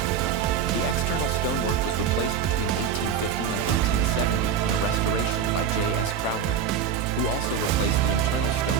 The external stonework was replaced between 1850 and 1870 in a restoration by J.S. Crowther, who also replaced the internal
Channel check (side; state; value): left; quieter; 7.2 dB